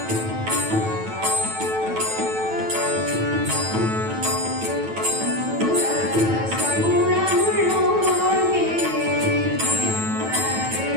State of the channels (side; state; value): left; late; 9.1 ms